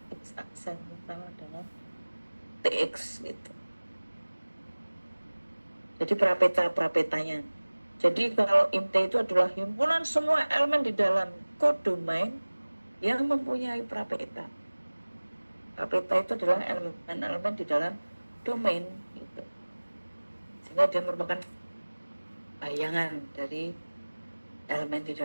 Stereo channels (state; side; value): inverted; both; correlation -1.00